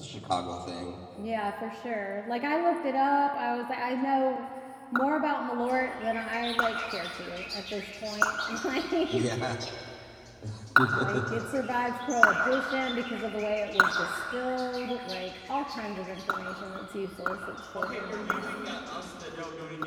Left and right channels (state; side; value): identical; both; correlation 1.00